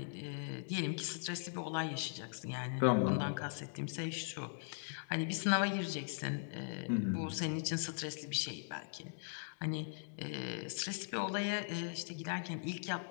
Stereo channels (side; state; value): right; silent; digital silence